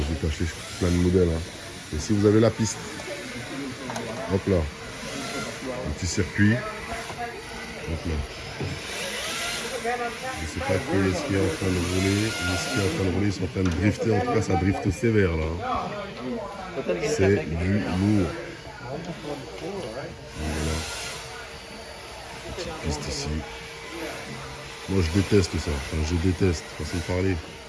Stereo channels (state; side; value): identical; both; correlation 1.00